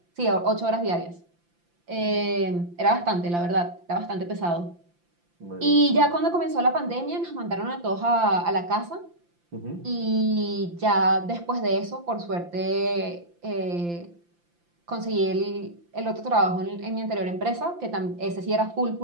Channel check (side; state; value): left; late; 5.8 ms